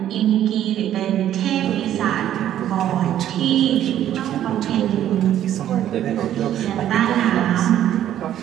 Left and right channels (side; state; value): left; quieter; 11.4 dB